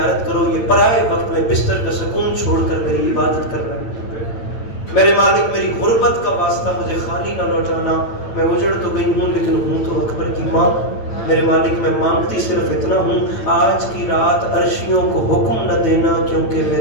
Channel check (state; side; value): late; right; 8.9 ms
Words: کرو, یہ پرائے وقت میں بستر کا سکون چھوڑ کر میری عبادت کر رہا ہے. میرے مالک میری غربت کا واسطہ مجھے خالی نہ لوٹانا, میں اجڑ تو گئی ہوں لیکن ہوں تو اکبر کی ماں. میرے مالک میں مانگتی صرف اتنا ہوں, آج کی رات عرشیوں کو حکم نہ دینا کیونکہ